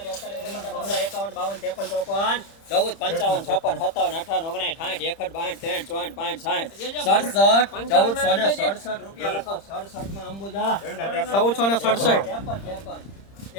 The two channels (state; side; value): late; right; 30 ms